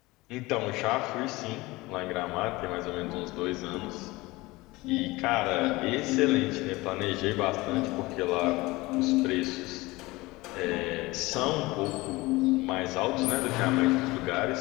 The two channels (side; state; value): right; quieter; 21.3 dB